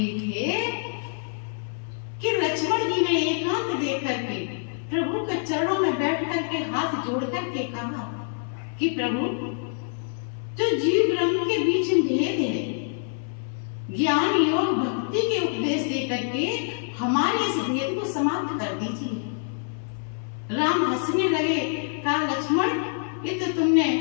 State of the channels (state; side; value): silent; right; 60 dB below the other